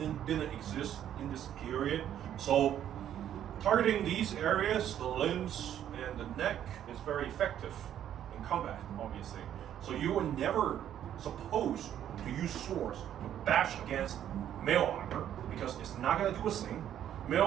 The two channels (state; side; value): quieter; left; 10.6 dB